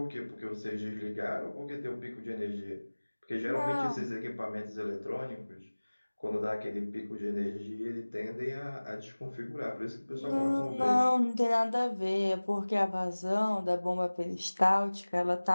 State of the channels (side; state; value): both; inverted; correlation -1.00